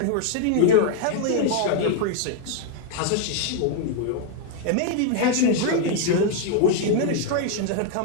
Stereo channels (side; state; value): both; different; correlation 0.00